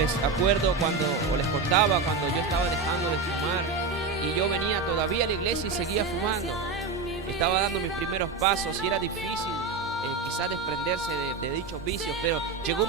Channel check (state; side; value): quieter; left; 4.4 dB